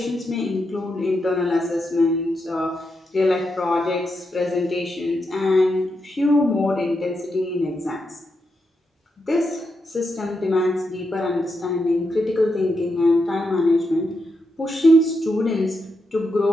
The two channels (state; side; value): normal; both; correlation 0.84